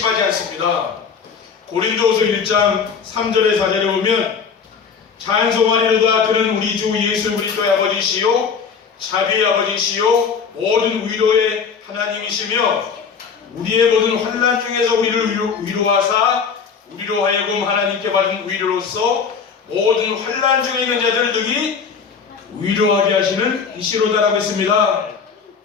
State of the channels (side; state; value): right; quieter; 6.1 dB